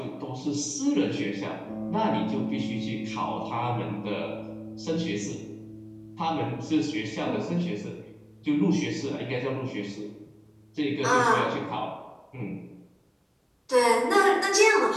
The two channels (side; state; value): both; identical; correlation 1.00